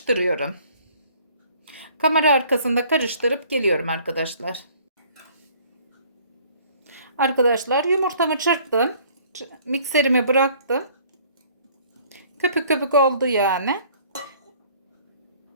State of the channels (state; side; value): inverted; both; correlation -0.56